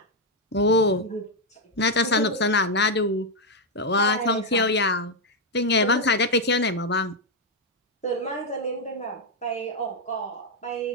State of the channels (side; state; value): both; normal; correlation 0.02